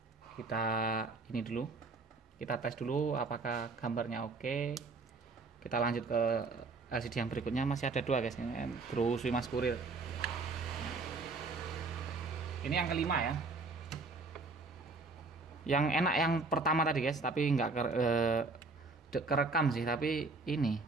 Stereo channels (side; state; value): left; quieter; 3.8 dB